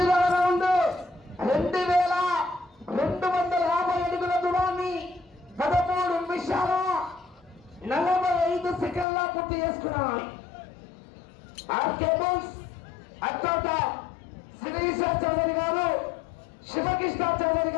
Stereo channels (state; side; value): drops out; right; at 9.1 s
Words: రౌండ్ 2250 అడుగుల దూరాన్ని 13 నిమిషాల 45 సెకండ్ల పూర్తి చేసుకున్నాయి. ఆర్కేబుల్స్ అత్యంత శ్రీశ చౌదరి గారు శివకృష్ణ చౌదరి